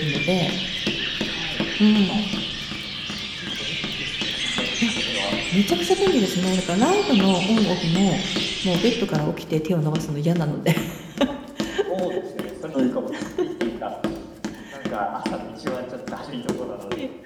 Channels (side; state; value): both; identical; correlation 1.00